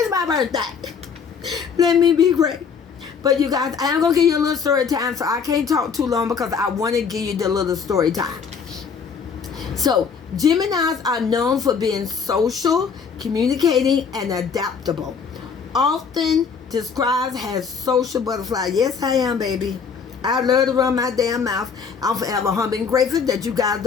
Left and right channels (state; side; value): quieter; right; 6.1 dB